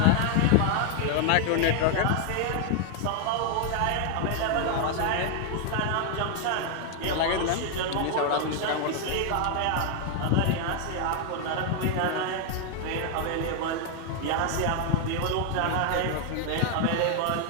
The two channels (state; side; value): different; both; correlation 0.00